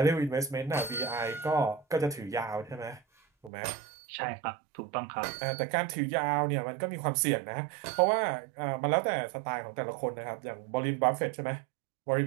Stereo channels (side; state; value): left; drops out; at 3.5 s